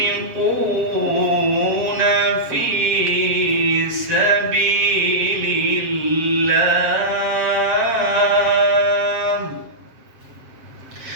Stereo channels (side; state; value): left; late; 7.1 ms